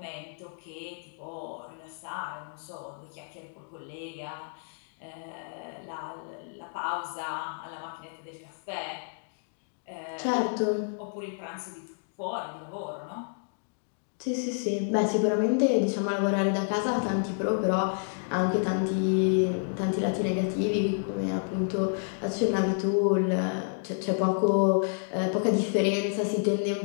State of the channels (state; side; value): silent; right; digital silence